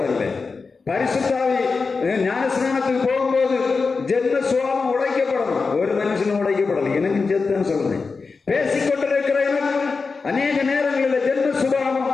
பரிசுத்த ஆவி ஞானஸ்நானத்துக்கு போகும்போது ஜென்ம சுபாவம் உடைக்கப்படணும். ஒரு மனுஷனும் உடைக்கப்படலை. எனக்கு செத்துன்னு சொல்றேன். பேசிக்கொண்டிருக்கிற எனக்கு அநேக நேரங்களில் ஜென்ம சுபாவம்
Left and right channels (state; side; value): quieter; right; 4.5 dB